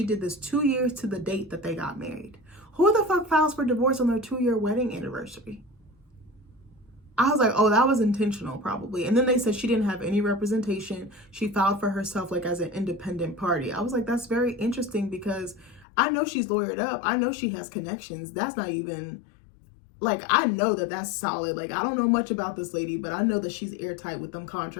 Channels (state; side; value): drops out; right; at 15.9 s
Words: did this 2 years to the date that they got married. Who the fuck files for divorce on their 2-year wedding anniversary? I was like, oh, that was intentional probably. And then they said she didn't have any representation. She filed for herself like as an independent party. I was like, that's very interesting because I know she's lawyered up. I know she has connections. That's not even... Like, I know that that's solid. Like, I don't know much about this lady, but I know that she's airtight with them